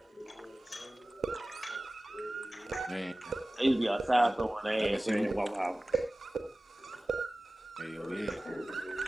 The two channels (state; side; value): normal; both; correlation 0.97